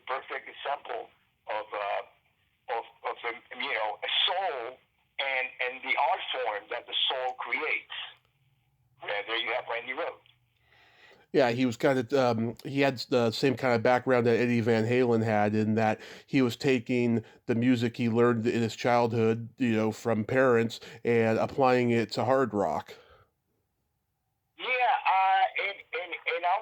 perfect example of a soul and the art form that the soul creates. Yeah, there you have Randy Rhoads. Yeah, he was kind of, he had the same kind of background that Eddie Van Halen had in that he was taking the music he learned in his childhood, you know, from parents and applying it to hard rock. Yeah, and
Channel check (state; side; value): identical; both; correlation 1.00